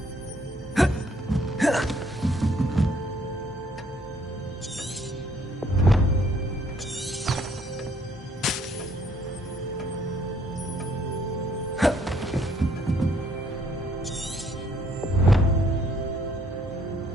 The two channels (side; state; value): both; normal; correlation 0.65